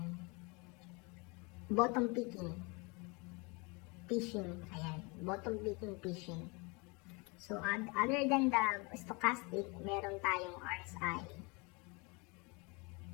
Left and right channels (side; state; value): right; quieter; 29.0 dB